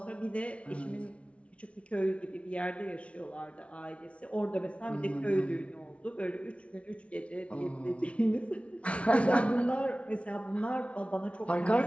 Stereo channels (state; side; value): late; right; 0.062 ms